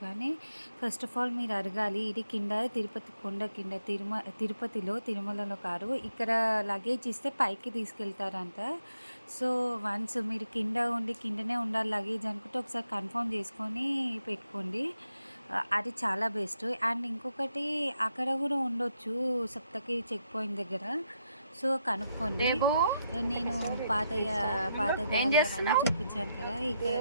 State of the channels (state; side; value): inverted; both; correlation -0.81